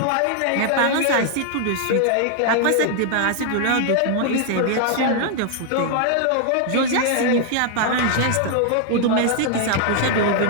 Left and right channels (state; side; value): different; both; correlation 0.00